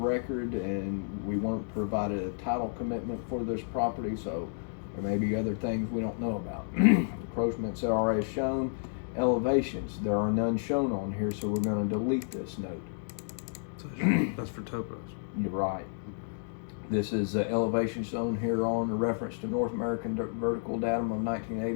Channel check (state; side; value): silent; right; digital silence